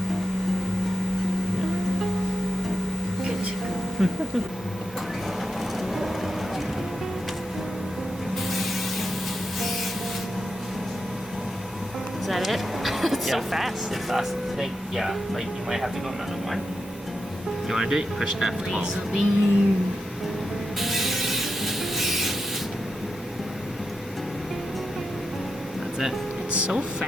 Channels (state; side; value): normal; both; correlation 0.87